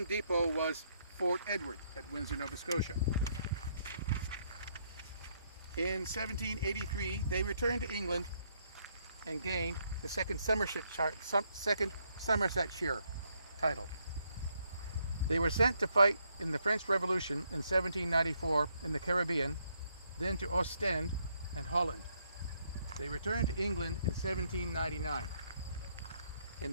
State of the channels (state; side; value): inverted; both; correlation -0.73